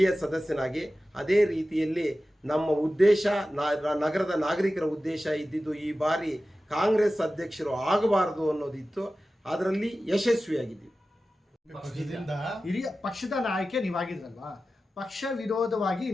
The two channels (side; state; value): both; normal; correlation 0.95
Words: ಸದಸ್ಯನಾಗಿ. ಅದೇ ರೀತಿಯಲ್ಲಿ ನಮ್ಮ ಉದ್ದೇಶ, ನಗರದ ನಾಗರಿಕರ ಉದ್ದೇಶ ಇದ್ದಿದ್ದು ಈ ಬಾರಿ ಕಾಂಗ್ರೆಸ್ ಅಧ್ಯಕ್ಷರು ಆಗಬಾರದು ಅನ್ನೋದಿತ್ತು. ಅದರಲ್ಲಿ ಯಶಸ್ವಿಯಾಗಿದ್ದೀವಿ. ಹಿರಿಯ ಪಕ್ಷದ ನಾಯಕ ನೀವಾಗಿದ್ರಲ್ವಾ, ಪಕ್ಷ ವಿರೋಧವಾಗಿ